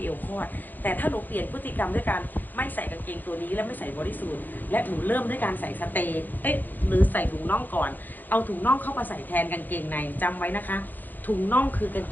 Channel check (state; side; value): late; right; 0.086 ms